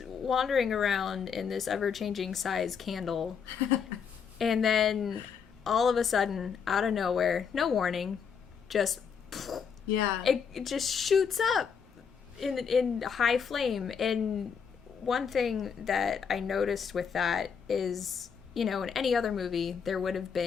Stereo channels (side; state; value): right; quieter; 6.6 dB